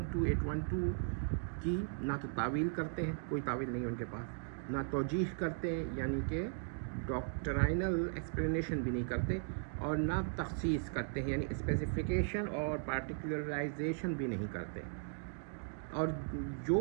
2812 کی نہ تو تعویل کرتے ہیں، کوئی تعویل نہیں ہے ان کے پاس، نہ توجیح کرتے ہیں یعنی کہ ڈاکٹرائنل ایکسپلینیشن بھی نہیں کرتے، اور نہ تخصیص کرتے ہیں یعنی اسپیسیفیکیشن اور پارٹیکولرائزیشن بھی نہیں کرتے۔ اور جو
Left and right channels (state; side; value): silent; left; digital silence